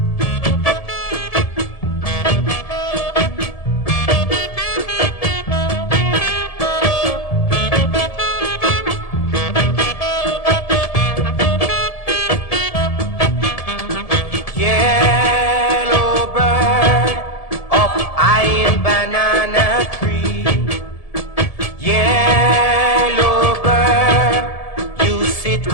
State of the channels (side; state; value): right; late; 1.7 ms